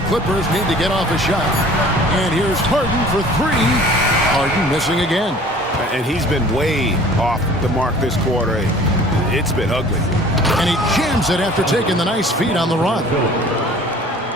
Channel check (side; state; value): both; normal; correlation 0.49